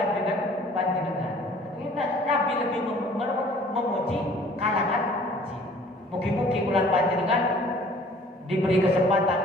Ini Nabi lebih memuji kalangan jin. Mugi-mugi bulan panjenengan diberi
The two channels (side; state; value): both; normal; correlation 0.53